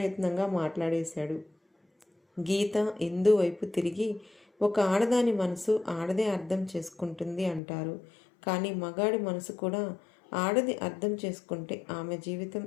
మాట్లాడేశాడు. గీత ఇందు వైపు తిరిగి, ఒక ఆడదాని మనసు ఆడదే అర్థం చేసుకుంటుంది అంటారు. కానీ మగాడి మనసు కూడా ఆడది అర్థం చేసుకుంటే ఆమె జీవితం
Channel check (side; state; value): right; drops out; at 7.6 s